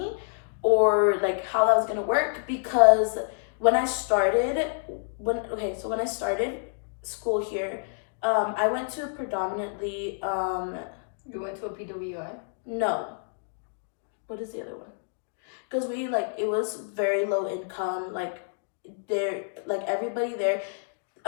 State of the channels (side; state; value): right; silent; digital silence